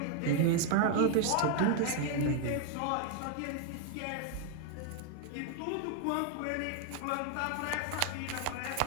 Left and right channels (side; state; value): both; different; correlation 0.01